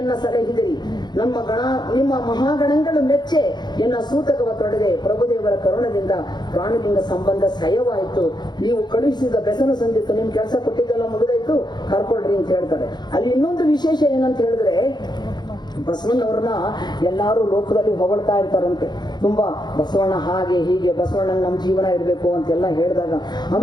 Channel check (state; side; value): late; right; 0.21 ms